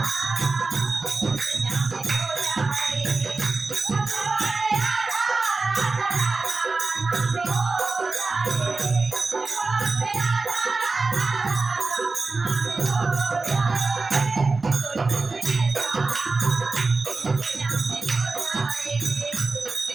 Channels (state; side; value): quieter; left; 3.8 dB